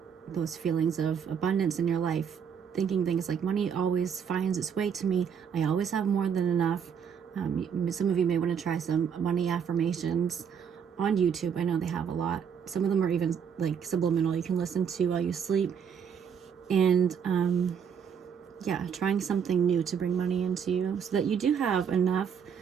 those feelings of abundance in your life, thinking things like money always finds its way to me, I always have more than enough. Some of you may want to try some money affirmations on YouTube. I know they have a lot. Some of them are even like subliminal, you can listen to while you sleep. And yeah, trying something new to bring money into you so that you do have enough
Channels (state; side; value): quieter; left; 7.3 dB